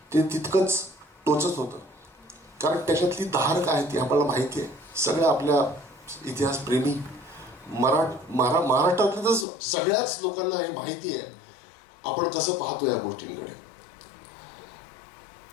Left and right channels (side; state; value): right; drops out; at 9.5 s